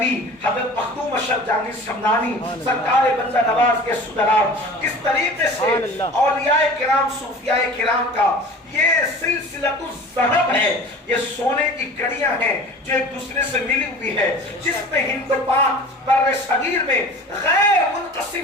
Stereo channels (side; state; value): both; normal; correlation 0.41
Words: حضرت مخدوم اشرف جہانگیر سمنانی، سرکار بندہ نواز کے سدرات، اس طریقے سے اولیاء کرام صوفیاء کرام کا یہ سلسلۃ الذہب ہے، یہ سونے کی کڑیاں ہیں جو ایک دوسرے سے ملی ہوئی ہے، جس میں ہند و پاک بر صغیر میں غیر